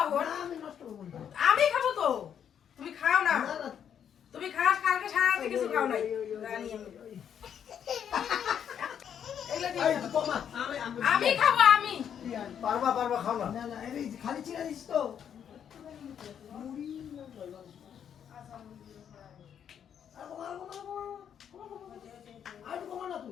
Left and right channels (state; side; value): quieter; right; 8.6 dB